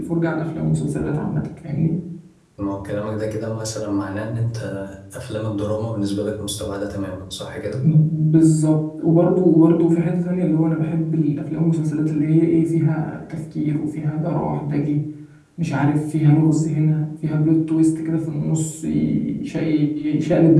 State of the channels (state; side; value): identical; both; correlation 1.00